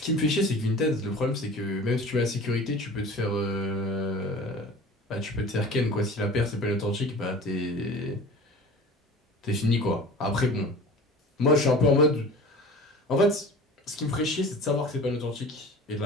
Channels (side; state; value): both; normal; correlation 0.40